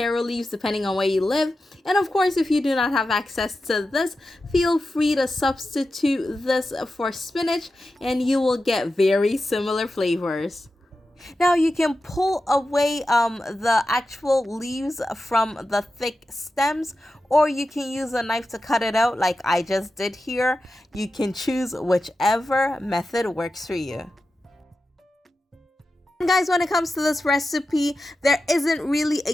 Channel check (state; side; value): normal; both; correlation 0.92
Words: leaves depending on where you live. And of course, if you do not have access to this, feel free to substitute this for spinach and you will get very similar flavors. Now you can pull away the actual leaves from the thick stems, or you can use a knife to cut it out like I just did here. You can choose whichever method works for you. And guys, when it comes to this recipe, there isn't really